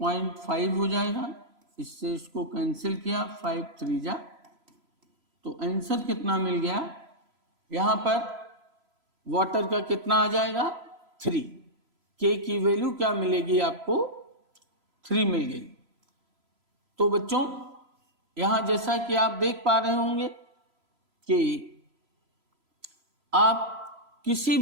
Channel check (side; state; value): left; late; 3.0 ms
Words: हो जाएगा, इससे इसको कैंसिल किया, 5 3 जा, तो आंसर कितना मिल गया, यहां पर वाटर का कितना आ जाएगा 3, के की वैल्यू क्या मिलेगी आपको 3 मिल गई। तो बच्चों यहां जैसा कि आप देख पा रहे होंगे कि आप किसी